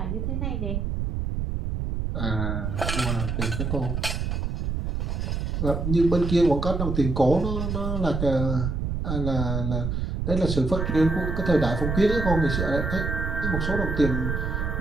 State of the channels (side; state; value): right; noise; rumble, 2 dB below the sound